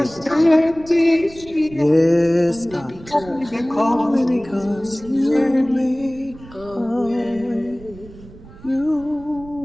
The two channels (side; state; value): right; noise; rumble, 20 dB below the sound